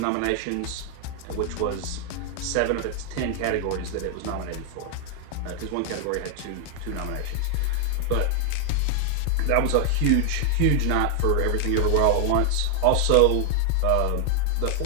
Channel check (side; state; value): both; different; correlation 0.00